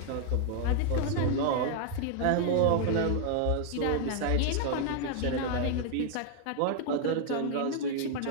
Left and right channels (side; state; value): both; different; correlation 0.00